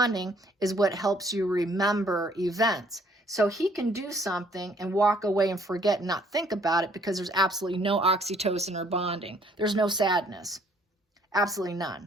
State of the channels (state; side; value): normal; both; correlation 0.62